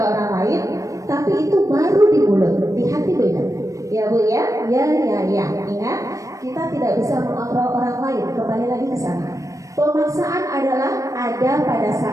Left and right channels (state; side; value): late; left; 0.16 ms